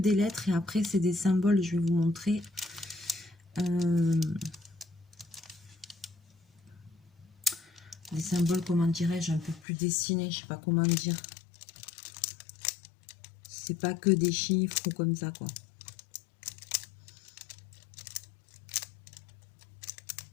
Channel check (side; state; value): right; drops out; at 9.6 s